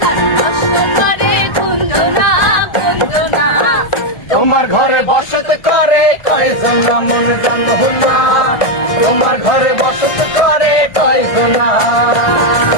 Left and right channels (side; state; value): right; late; 1.5 ms